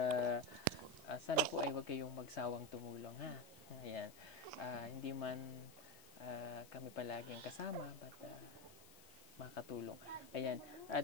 sana po ay huwag kayong magsawang tumulong, ha? Ayan. Hindi man kami palagi ang kasama, but makatulong. Ayan.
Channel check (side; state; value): left; noise; hiss, 19 dB below the sound